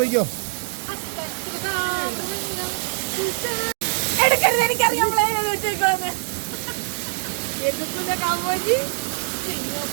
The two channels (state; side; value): silent; left; digital silence